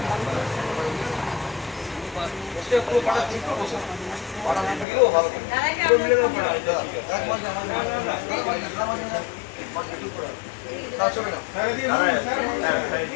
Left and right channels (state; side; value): drops out; right; at 4.9 s